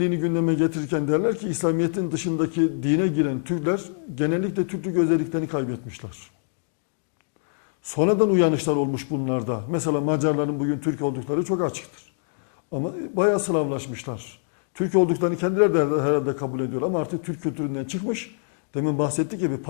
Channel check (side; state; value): right; silent; digital silence